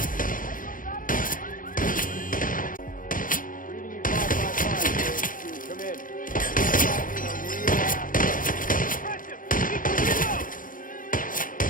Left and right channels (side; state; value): right; late; 0.40 ms